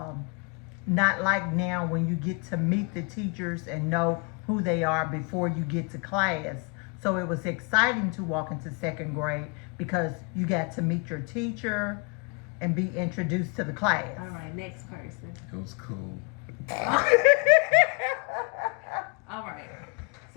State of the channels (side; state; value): right; quieter; 31.1 dB